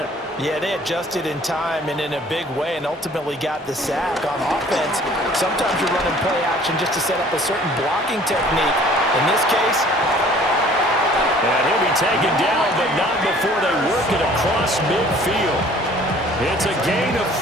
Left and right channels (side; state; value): both; normal; correlation 0.53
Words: Yeah, they adjusted in time and in a big way and ultimately got the sack. On offense, sometimes you're running play action just to set up a certain blocking technique. In this case, and he'll be taken down, but not before they work it across midfield. It's a gain of